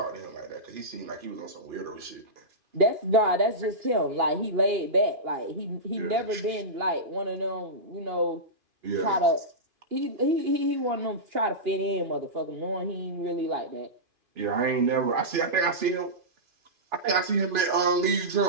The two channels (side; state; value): left; late; 2.5 ms